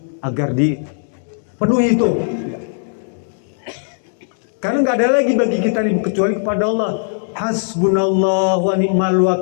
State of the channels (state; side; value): silent; right; digital silence